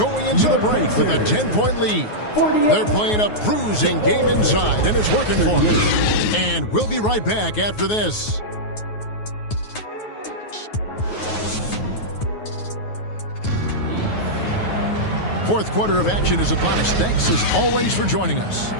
into the break with a 10-point lead. They're playing a bruising game inside, and it's working for them. And we'll be right back after this. Fourth quarter of action is upon us. Thanks, as always, for joining us.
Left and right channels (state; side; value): late; right; 9.4 ms